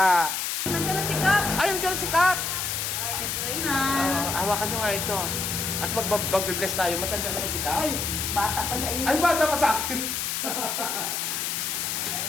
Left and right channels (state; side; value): noise; left; hiss, 1 dB below the sound